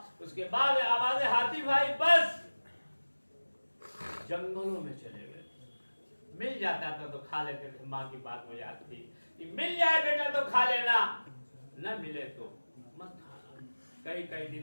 उसके बाद आवाज़ हाथी भाई बस जंगलों में चले गए। मिल जाता था तो खा लेते थे, माँ की बात हो जाती थी कि मिल जाए बेटा तो खा लेना, न मिले तो मत खाना। कई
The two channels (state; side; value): inverted; both; correlation -1.00